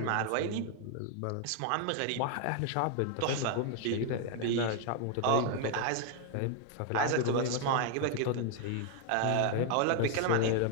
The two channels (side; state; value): both; different; correlation 0.00